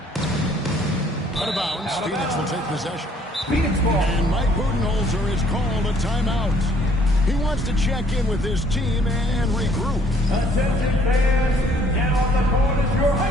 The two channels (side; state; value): both; normal; correlation 0.61